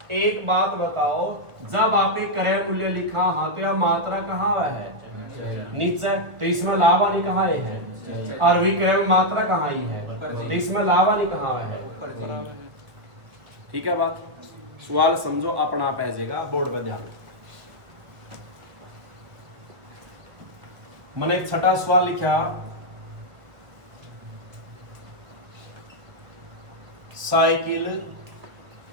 एक बात बताओ, जब आपने क्रय मूल्य लिखा हाँ तो यह मात्रा कहाँ है? नीचे। तो इसमें लाभ हानि कहाँ है? और विक्रय में मात्रा कहाँ ही है? तो इसमें लाभ हानि कहाँ है? ठीक है बात? सवाल समझो अपना पैजेगा बोर्ड पर ध्यान। मैंने एक छठा सवाल लिखा, साइकिल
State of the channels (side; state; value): left; late; 1.5 ms